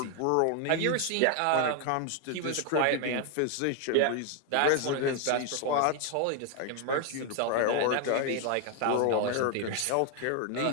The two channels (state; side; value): different; both; correlation 0.01